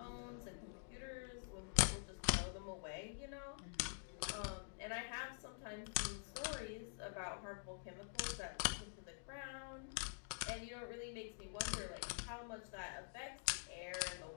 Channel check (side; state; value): right; silent; digital silence